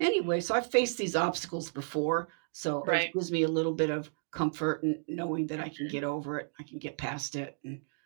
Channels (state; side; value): silent; left; digital silence